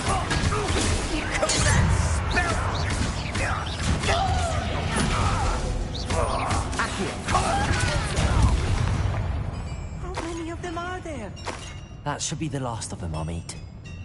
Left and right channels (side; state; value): both; identical; correlation 1.00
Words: You call that How many of them are there? That should be the last of them, Amit.